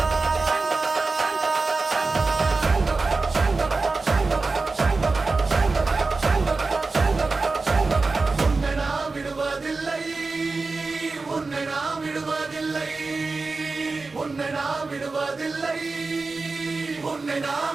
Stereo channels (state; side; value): quieter; left; 3.8 dB